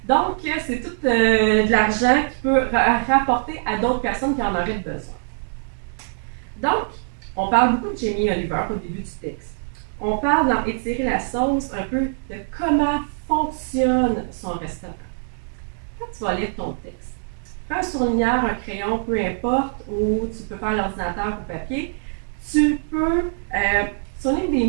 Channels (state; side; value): silent; left; digital silence